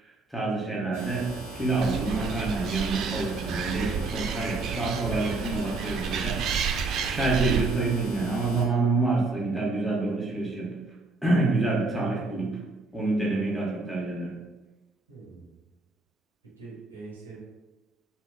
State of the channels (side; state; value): left; quieter; 3.2 dB